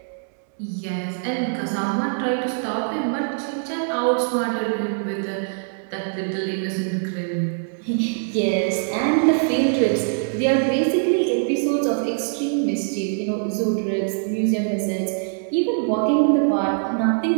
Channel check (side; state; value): left; silent; digital silence